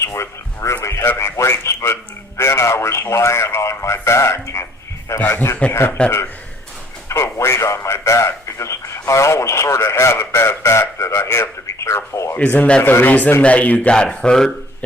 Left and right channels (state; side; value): normal; both; correlation 0.57